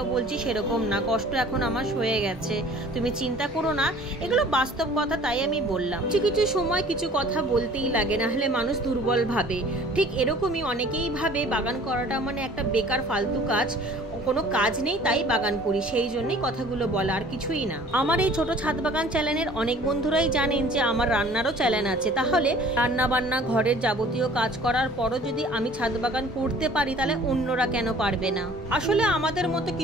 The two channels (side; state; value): both; normal; correlation 0.50